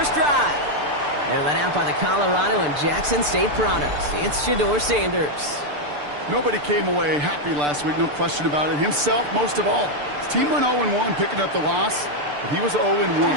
drive. They're led out by the Colorado and Jackson State products. It's Shedeur Sanders. Nobody came away happy last week, no question about it. Himself, most of all. His team went 0-1, picking up the loss. But he was 0-1.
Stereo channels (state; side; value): late; left; 6.8 ms